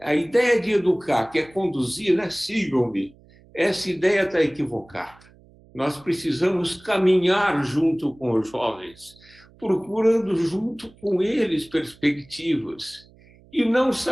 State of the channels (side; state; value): right; noise; hum, 27 dB below the sound